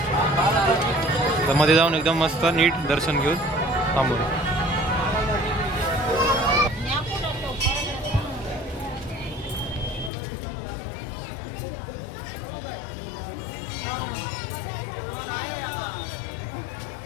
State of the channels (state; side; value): drops out; right; at 10.1 s